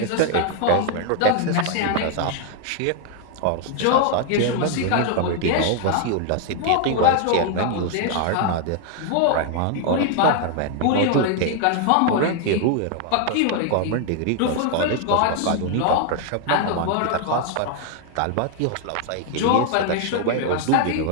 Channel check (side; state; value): both; different; correlation 0.00